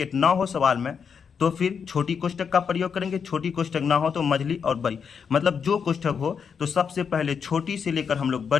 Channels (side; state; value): right; quieter; 6.5 dB